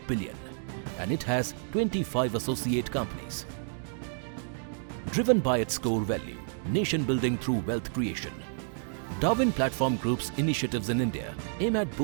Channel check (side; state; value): left; silent; 58 dB below the other